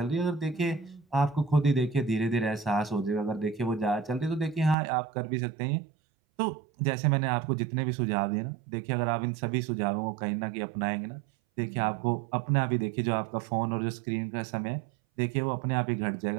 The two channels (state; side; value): drops out; left; at 4.8 s